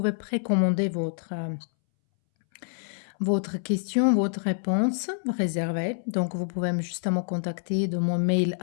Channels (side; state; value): right; silent; 60 dB below the other